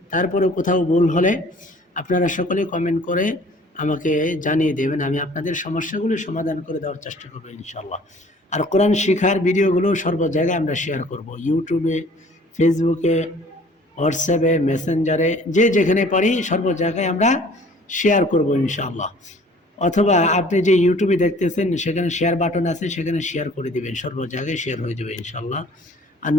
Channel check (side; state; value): both; normal; correlation 0.52